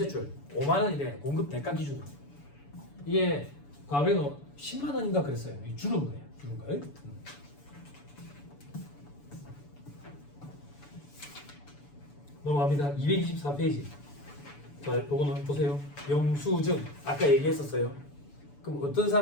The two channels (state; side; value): late; right; 7.0 ms